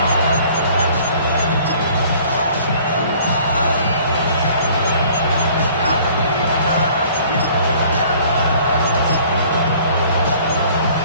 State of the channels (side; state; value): both; inverted; correlation -0.53